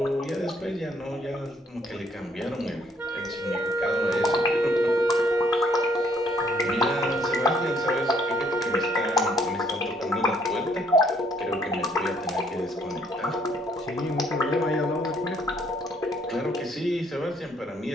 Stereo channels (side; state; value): both; normal; correlation 0.66